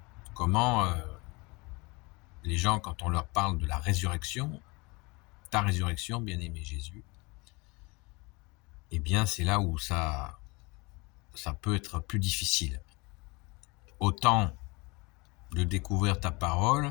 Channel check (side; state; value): right; quieter; 26.7 dB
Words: comment les gens, quand on leur parle de la résurrection, ta résurrection, bien-aimé Jésus, eh bien c'est là où ça peut être plus difficile. Autant de découvrir ta parole,